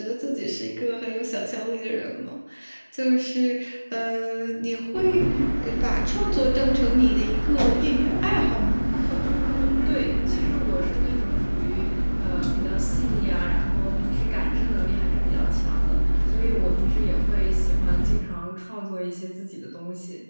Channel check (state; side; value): inverted; both; correlation -1.00